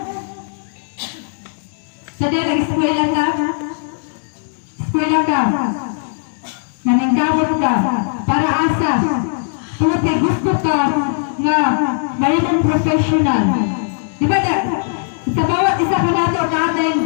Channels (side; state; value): right; silent; digital silence